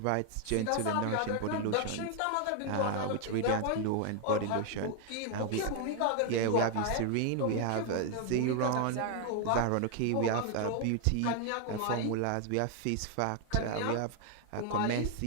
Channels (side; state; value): both; different; correlation 0.00